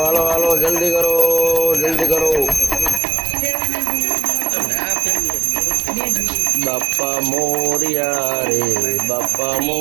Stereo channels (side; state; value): left; drops out; at 3.0 s